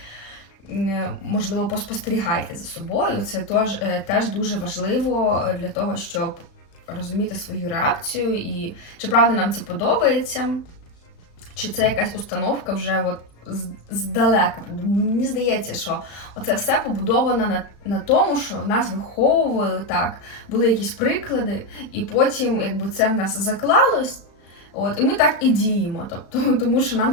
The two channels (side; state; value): right; late; 35 ms